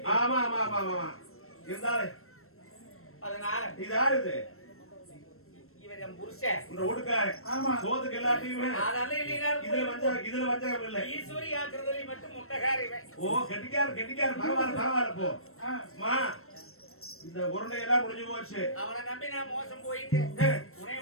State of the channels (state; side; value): late; right; 0.62 ms